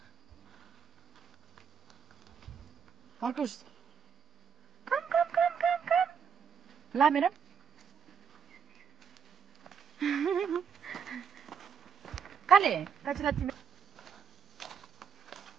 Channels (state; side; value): quieter; left; 7.1 dB